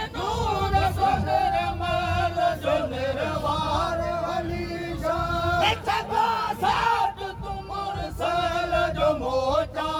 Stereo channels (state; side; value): identical; both; correlation 1.00